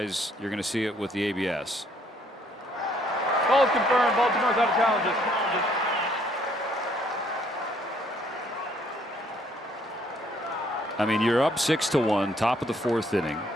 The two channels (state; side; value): normal; both; correlation 0.65